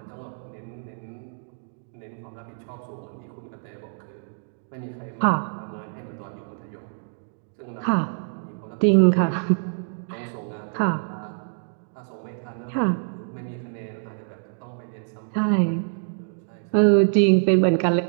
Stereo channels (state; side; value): silent; left; digital silence